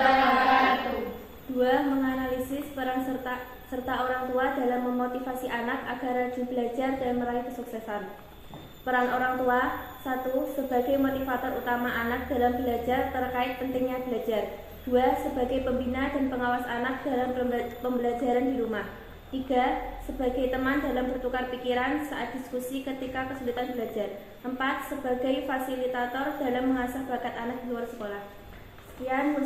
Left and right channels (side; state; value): both; identical; correlation 1.00